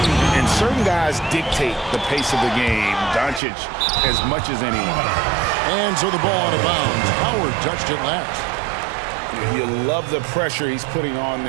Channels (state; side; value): drops out; left; at 3.4 s